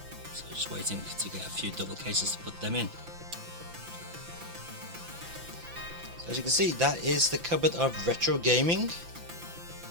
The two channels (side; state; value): left; late; 5.9 ms